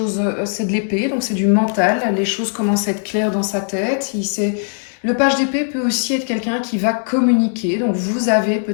c'est de l'épée, donc c'est du mental. Les choses commencent à être claires dans sa tête. Le page d'épée peut aussi être quelqu'un qui va communiquer. Donc vous avez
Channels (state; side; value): silent; right; 66 dB below the other